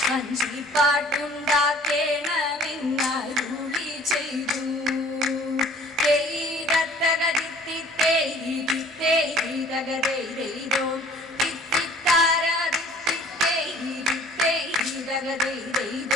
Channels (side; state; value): both; normal; correlation 0.52